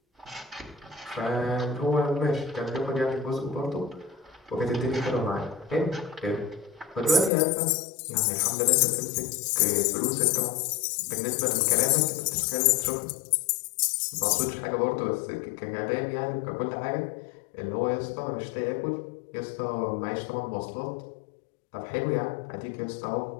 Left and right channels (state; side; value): drops out; right; at 7.3 s